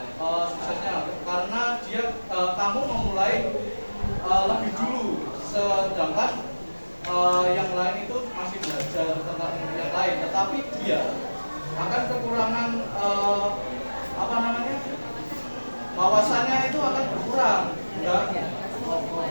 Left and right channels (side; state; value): both; inverted; correlation -1.00